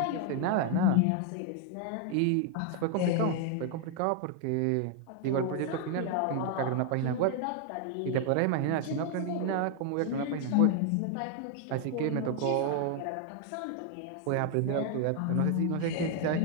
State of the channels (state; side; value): different; both; correlation 0.00